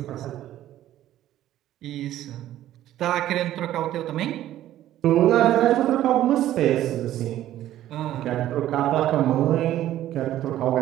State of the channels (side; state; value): left; quieter; 13.1 dB